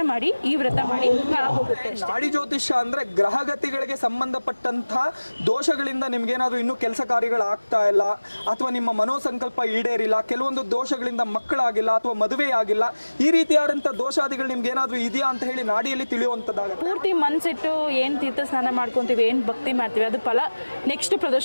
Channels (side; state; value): both; inverted; correlation -1.00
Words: ಮಾಡಿ, ಈ ವ್ರತ ಮಾಡಿ ಹೋಗುತ್ತೆ. ನಾಡಿ ಜ್ಯೋತಿಷ್ಯ ಅಂದ್ರೆ ಗ್ರಹಗತಿಗಳಿಗೆ ಸಂಬಂಧಪಟ್ಟಂತಹ ದೋಷಗಳಿಂದ ನಿಮ್ಗೇನಾದ್ರೂ ಇನ್ನೂ ಕೆಲಸ ಕಾರ್ಯಗಳು ಆಗ್ತಾ ಇಲ್ಲ, ಅಥವಾ ನಿಮ್ಮ ಮನೋಸಂಕಲ್ಪ ಈಡೇರಿಲ್ಲ, ಕೆಲವೊಂದು ದೋಷಗಳಿಂದ ಮಕ್ಕಳಾಗಿಲ್ಲ ಅಥವಾ ಮದುವೆ ಆಗಿಲ್ಲ, ಈ ರೀತಿಯಾದಂತಹ ದೋಷಾದಿಗಳು ನಿಮ್ಗೆ ಏನಾದ್ರೂ ಇದೆಯಾ ಅಂತ ಹೇಳಿ ನಾಡಿಯಲ್ಲಿ ತಿಳಿಯುವಂತದ್ದಾಗುತ್ತೆ. ಪೂರ್ತಿ ಮನ್ಸಿಟ್ಟು ಏನ್ ತೀರ್ಥ ಸ್ನಾನ ಮಾಡ್ಕೊಂತೀವಿ, ಏನ್ ಭಕ್ತಿ ಮಾಡ್ತೀವಿ, ಅದು ಫಲ ನೆಕ್ಸ್ಟ್